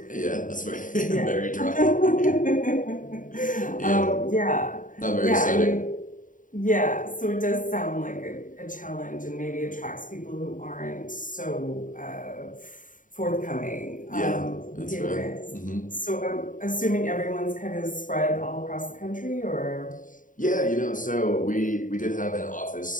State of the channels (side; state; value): right; late; 0.38 ms